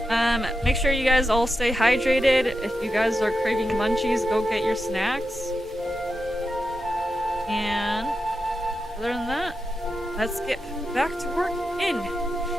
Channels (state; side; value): normal; both; correlation 0.89